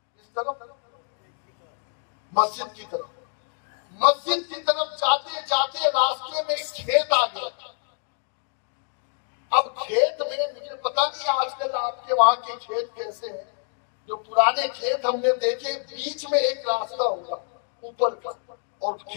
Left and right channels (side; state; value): right; silent; 57 dB below the other